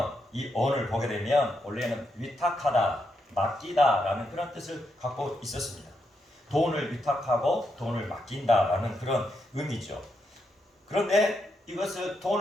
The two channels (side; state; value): both; normal; correlation 0.81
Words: 이 언을 보게 되면 원래는 위탁하다, 맡기다라는 그런 뜻을 갖고 있었습니다. 돈을 위탁하고 돈을 맡긴다라는 그런 의미죠. 그런데 이것을